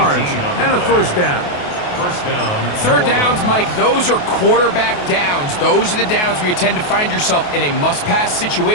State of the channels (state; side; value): late; right; 28 ms